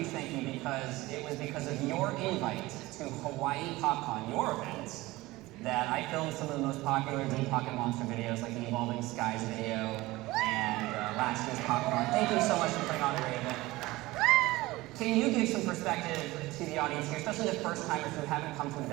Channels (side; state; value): left; quieter; 19.5 dB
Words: thank you because it was because of your invite to Hawaii PopCon, your event, that I filmed some of the most popular Deep Pocket Monster videos, like the Evolving Skies video and last year's PopCon. Thank you so much for putting on a great event. Can you give some perspective to the audience here, especially the first timers who haven't come to an